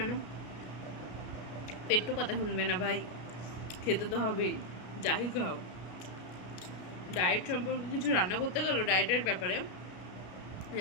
না, পেট তো কথা শুনবে না ভাই, খেতে তো হবেই, যাই খাও। ডায়েট সম্পর্কে কিছু রান্না করতে গেলো, ডায়েটের ব্যাপারে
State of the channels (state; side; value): late; right; 33 ms